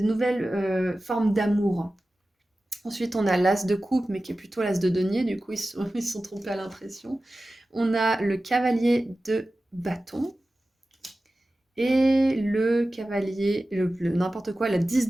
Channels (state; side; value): normal; both; correlation 0.95